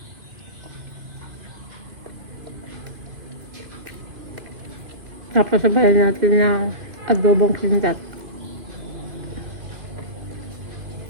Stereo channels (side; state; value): left; late; 2.5 ms